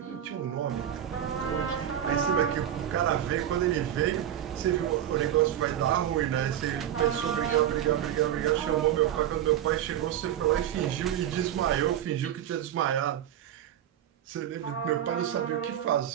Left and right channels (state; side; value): quieter; left; 10.8 dB